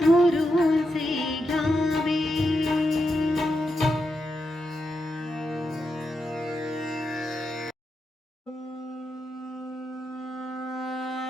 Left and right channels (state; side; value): normal; both; correlation 0.86